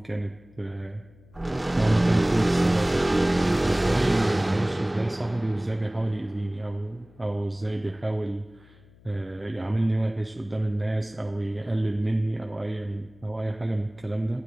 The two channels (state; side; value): noise; left; hum, 26 dB below the sound